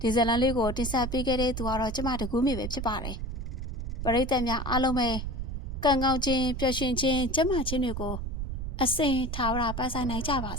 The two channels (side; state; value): right; noise; rumble, 5 dB below the sound